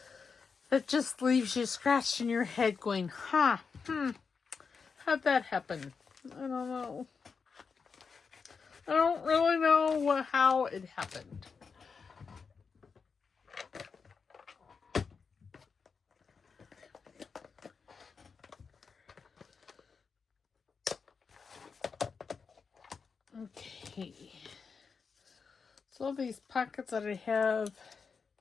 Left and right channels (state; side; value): quieter; right; 5.4 dB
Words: that just leaves you scratching your head going, how'd that happen? I don't know. I don't really know how it happened. Okay. So all these pockets that I have,